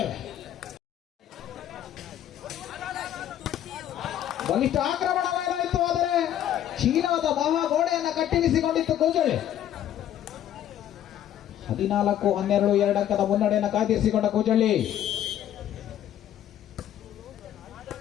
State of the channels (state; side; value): quieter; right; 11.2 dB